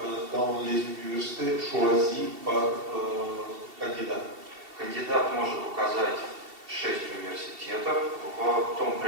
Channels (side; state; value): left; late; 2.7 ms